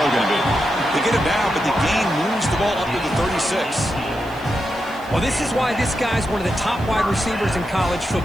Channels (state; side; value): noise; right; hiss, 25 dB below the sound